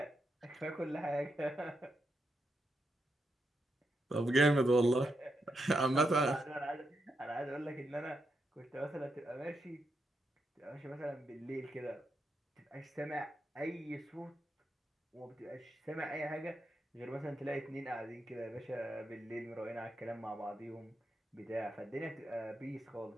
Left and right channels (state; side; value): normal; both; correlation 0.84